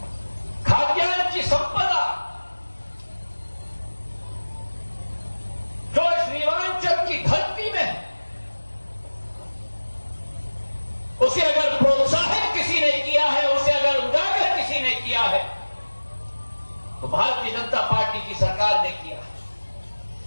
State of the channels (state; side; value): inverted; both; correlation -1.00